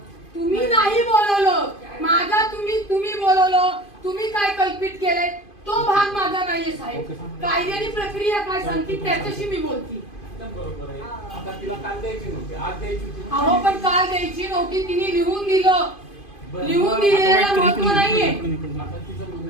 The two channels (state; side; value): late; right; 2.5 ms